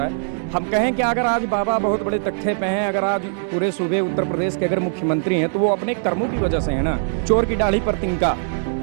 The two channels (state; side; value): silent; left; digital silence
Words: है। हम कहें कि अगर आज बाबा बहुत बड़े तख्ते पे हैं, अगर आज पूरे सूबे उत्तर प्रदेश के अगर मुख्यमंत्री हैं तो वो अपने कर्मों की वजह से है ना। चोर की दाढ़ी पर तिनका,